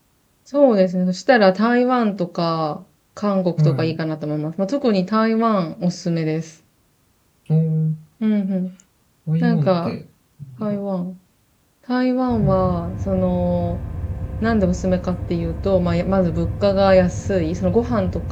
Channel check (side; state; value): both; identical; correlation 1.00